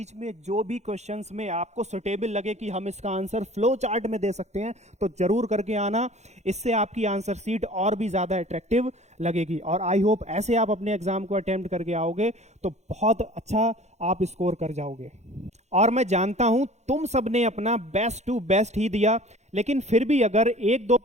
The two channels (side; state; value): left; late; 0.33 ms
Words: में जो भी क्वेश्चंस में आपको सुटेबल लगे कि हम इसका आंसर फ्लो चार्ट में दे सकते हैं तो जरूर करके आना, इससे आपकी आंसर सीट और भी ज्यादा अट्रैक्टिव लगेगी। और आई होप ऐसे आप अपने एग्जाम को अटेम्प्ट करके आओगे तो बहुत अच्छा आप स्कोर कर जाओगे। और मैं जानता हूं तुम सबने अपना बेस्ट टू बेस्ट ही दिया, लेकिन फिर भी अगर 1-2